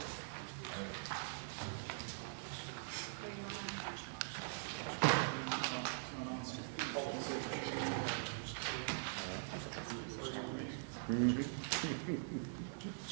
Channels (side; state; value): left; silent; digital silence